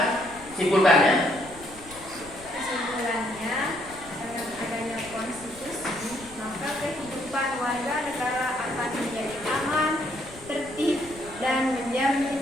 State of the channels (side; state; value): left; noise; rumble, 20 dB below the sound